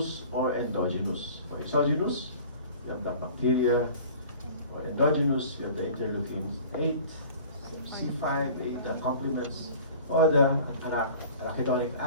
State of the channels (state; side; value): inverted; both; correlation -0.44